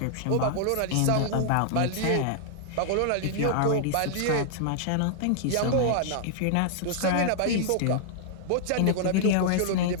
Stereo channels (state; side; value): different; both; correlation -0.01